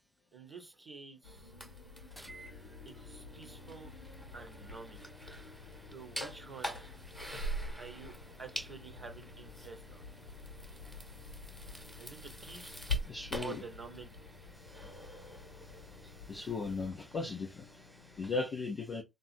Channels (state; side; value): normal; both; correlation 0.45